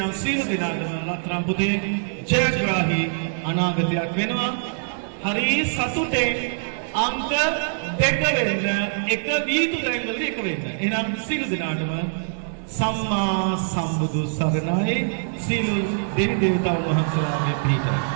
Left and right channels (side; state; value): left; silent; 55 dB below the other